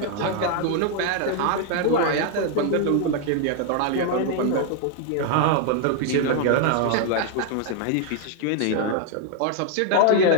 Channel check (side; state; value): both; different; correlation 0.00